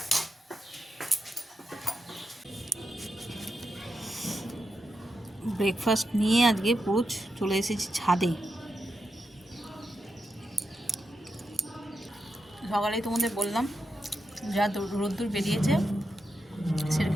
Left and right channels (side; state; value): both; normal; correlation 0.87